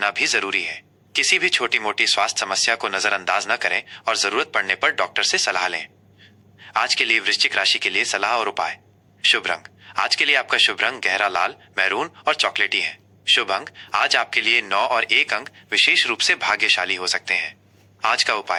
भी जरूरी है। किसी भी छोटी मोटी स्वास्थ्य समस्या को नजरअंदाज न करें और जरूरत पड़ने पर डॉक्टर से सलाह लें। आज के लिए वृश्चिक राशि के लिए सलाह और उपाय। शुभ रंग, आज के लिए आपका शुभ रंग गहरा लाल, मैरून और चॉकलेटी है। शुभ अंक, आज आपके लिए 9 और 1 अंक विशेष रूप से भाग्यशाली हो सकते हैं। आज का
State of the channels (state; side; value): identical; both; correlation 1.00